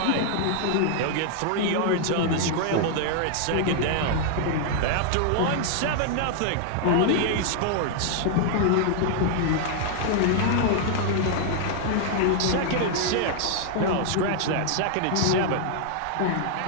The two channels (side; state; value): both; different; correlation 0.00